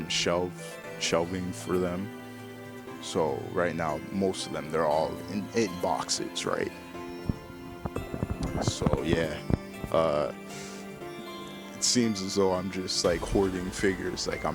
shelving for them. So right now most of them, they're all in boxes, right? So yeah, it seems as though I'm just like hoarding figures. Like,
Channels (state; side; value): identical; both; correlation 1.00